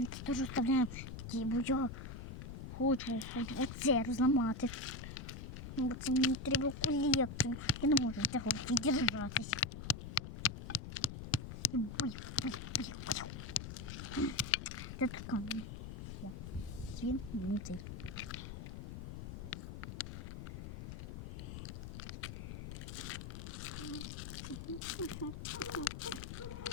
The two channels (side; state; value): left; noise; rumble, 8 dB below the sound